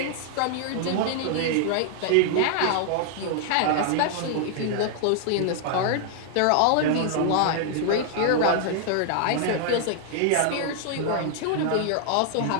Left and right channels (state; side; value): different; both; correlation 0.00